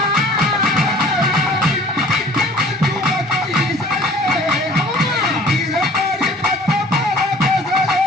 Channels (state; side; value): normal; both; correlation 0.50